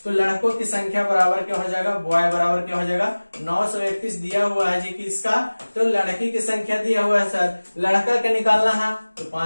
तो लड़कों की संख्या बराबर क्या हो जाएगा बॉय बराबर क्या हो जाएगा 931 दिया हुआ है जी किसका, तो लड़की की संख्या दिया हुआ है सर, लड़का का निकालना है तो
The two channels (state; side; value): inverted; both; correlation -1.00